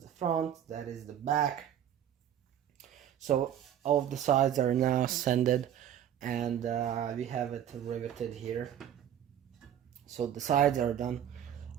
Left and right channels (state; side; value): quieter; left; 10.2 dB